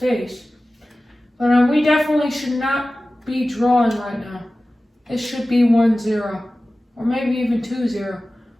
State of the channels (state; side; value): normal; both; correlation 0.96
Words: But we definitely should not be drawing right now. It should be 1-0, or maybe even 2-0.